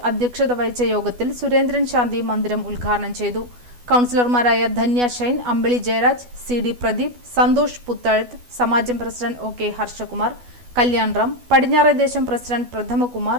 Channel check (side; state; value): left; late; 12 ms